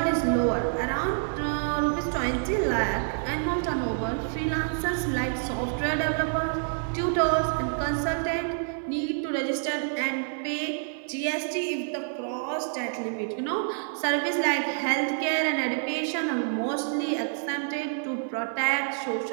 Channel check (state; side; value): silent; left; 60 dB below the other